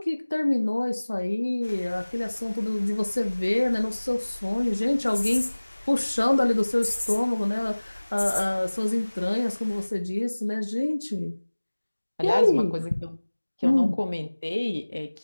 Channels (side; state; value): both; inverted; correlation -1.00